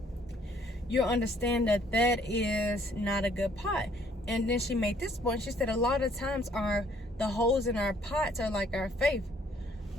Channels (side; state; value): both; normal; correlation 0.63